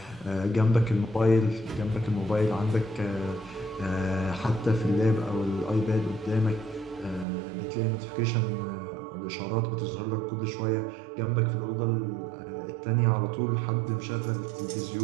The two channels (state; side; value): drops out; left; at 7.2 s